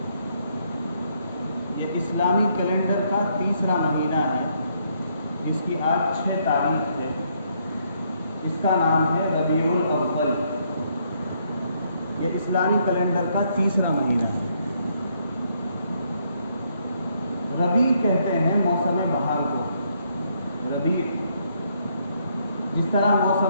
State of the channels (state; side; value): inverted; both; correlation -0.72